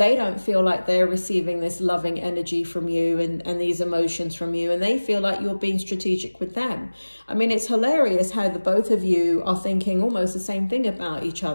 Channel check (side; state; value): both; inverted; correlation -1.00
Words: don't feel like they're receiving this loving energy from you and these emotions from you, and they feel like you're being strategic with them. I mean, it's hilarious how the both of you are thinking almost the same thing about each